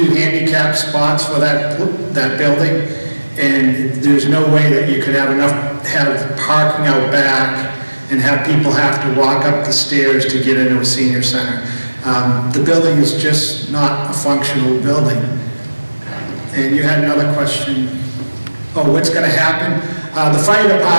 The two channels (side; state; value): both; inverted; correlation -1.00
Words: handicap spots for that building. And there's no way that you could have parking out back and have people have to walk up the stairs to get into a senior center. The building is just not a functional building. And you had another question. Oh, what's going to happen? The fire